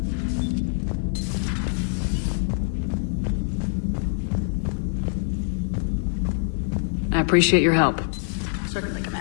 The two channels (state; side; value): silent; right; 62 dB below the other